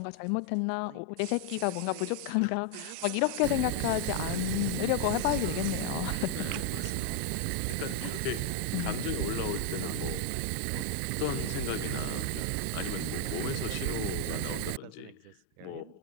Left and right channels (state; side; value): different; both; correlation 0.00